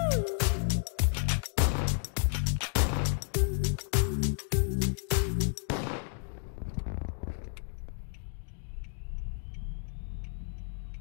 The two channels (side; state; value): right; silent; 57 dB below the other